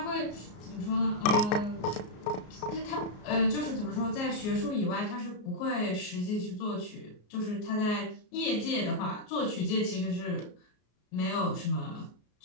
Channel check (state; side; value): late; right; 33 ms